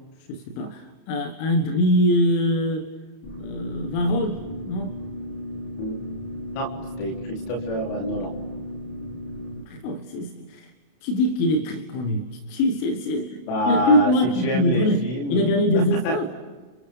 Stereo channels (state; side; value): late; right; 32 ms